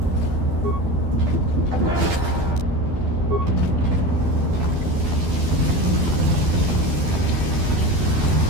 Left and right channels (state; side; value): late; left; 12 ms